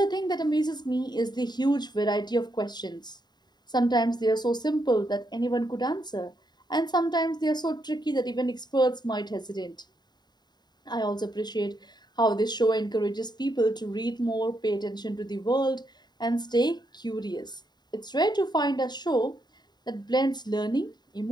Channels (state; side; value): late; right; 0.20 ms